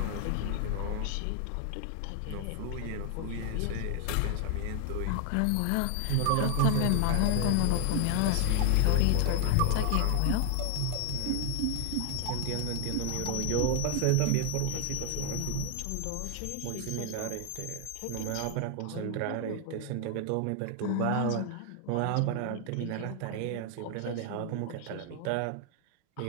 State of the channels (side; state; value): both; different; correlation 0.00